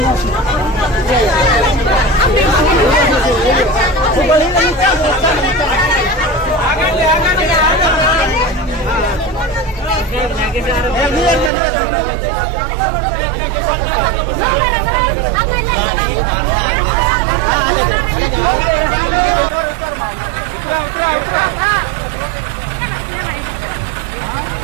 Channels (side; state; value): left; drops out; at 11.5 s